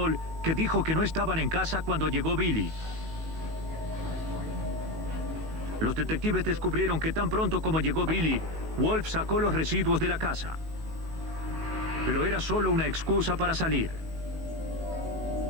que dijo que no estaban en casa cuando llegó Billy. Los detectives descubrieron que tan pronto como llegó Billy, Wolf sacó los residuos de la casa. Pero era solo una excusa para salir.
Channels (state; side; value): late; left; 19 ms